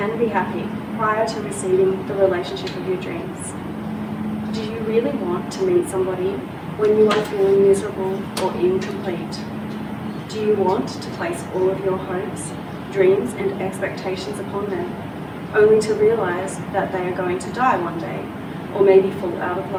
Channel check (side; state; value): both; identical; correlation 1.00